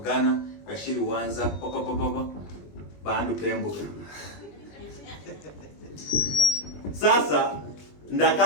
bashiri wanza poko bandu pembuka sasa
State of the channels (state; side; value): late; right; 20 ms